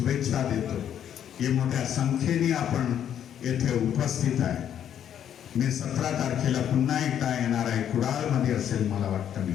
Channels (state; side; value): quieter; right; 9.7 dB